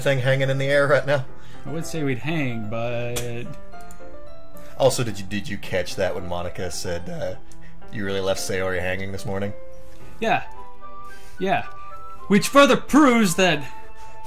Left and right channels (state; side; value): identical; both; correlation 1.00